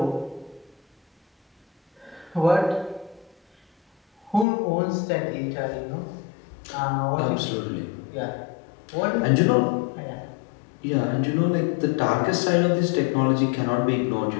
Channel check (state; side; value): drops out; right; at 4.5 s